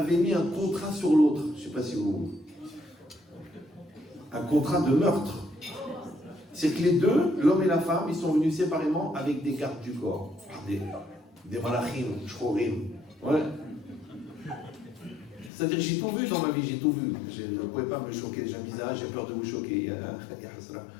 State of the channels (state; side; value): drops out; right; at 15.5 s